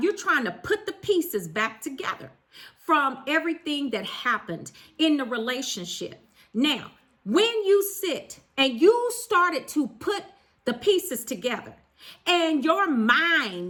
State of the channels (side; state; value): both; identical; correlation 1.00